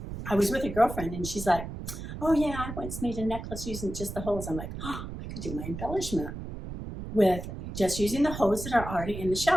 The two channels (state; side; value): noise; right; rumble, 8 dB below the sound